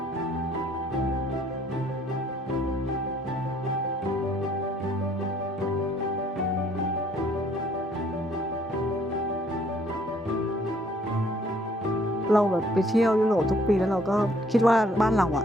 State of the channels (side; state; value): both; normal; correlation 0.62